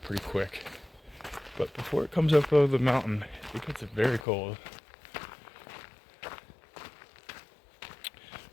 pretty quick. But before it comes up over the mountain, it gets very cold.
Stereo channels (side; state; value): right; drops out; at 4.2 s